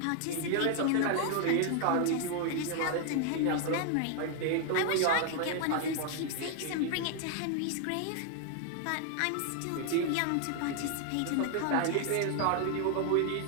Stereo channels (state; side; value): different; both; correlation 0.00